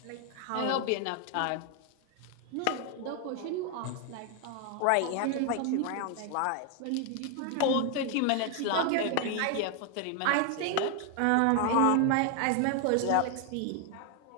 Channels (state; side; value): different; both; correlation 0.00